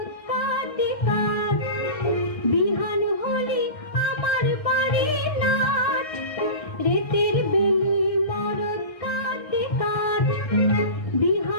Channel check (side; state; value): right; late; 1.6 ms